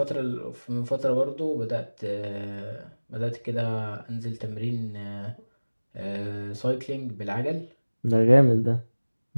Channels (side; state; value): both; inverted; correlation -1.00